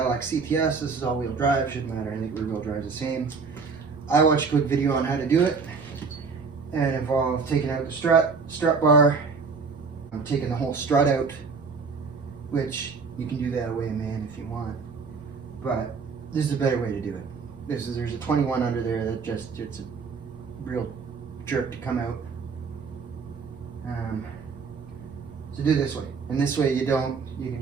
CTS. This is all-wheel drive, shouldn't matter, I think rear-wheel drive is the same. I watched a quick video on how to do it, and it involved taking out the strut bar, taking the whole strut out, which you can do that away, man, if you want, but this is a better way to do it. There's a 21 under there that it's a real jerk to come out. So do it this way, and this way you can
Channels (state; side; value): quieter; left; 5.0 dB